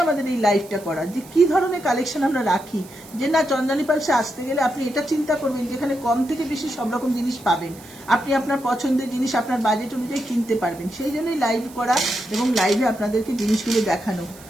আমাদের এই লাইভটা করা, যে কি ধরনের কালেকশন আমরা রাখি। যে না, চন্দ্রানী পালসে আসতে গেলে আপনি এটা চিন্তা করবেন যেখানে কম থেকে বেশি সব রকম জিনিস পাবেন, আপনি আপনার পছন্দের জিনিস আপনার বাজেট অনুযায়ী কিনতে পারবেন। সেই জন্যই লাইভ করা এবং লাইভে আপনাদেরকে জিনিসগুলো দেখানো।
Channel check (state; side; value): noise; right; hiss, 21 dB below the sound